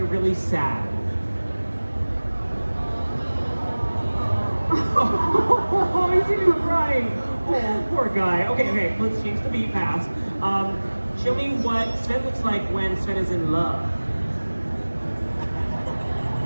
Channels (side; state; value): both; inverted; correlation -1.00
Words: really sad? Oh, he's even crying. Oh, poor guy. Okay, let's change the beat fast. Show me what Sven looks like when Sven is in love.